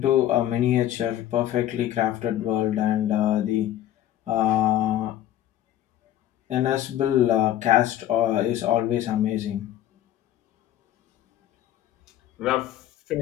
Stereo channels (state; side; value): quieter; right; 12.3 dB